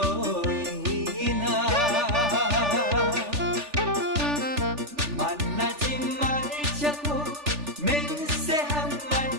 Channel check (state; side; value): late; left; 3.4 ms